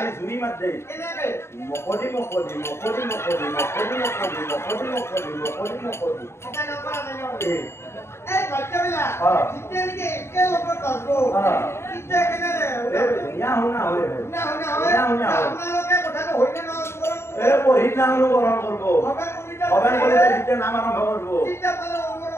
জুৰি মাত দেই কেনেকে মকদি এটা নপৰা নাই এই বাচ্চাবিলা জিতে নেকি একে লগত পারবো কিতে কেনে না হনা হয় না আপনারা কথাটা হইলে না পঢ়ি নাম অনুকরণ করব অবেন বলে দিতে নাম আরম্ভ করব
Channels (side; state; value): right; late; 0.12 ms